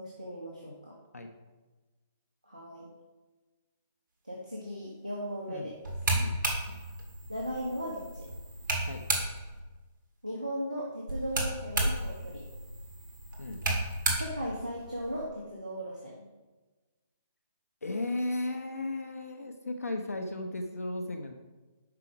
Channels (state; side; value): inverted; both; correlation -0.62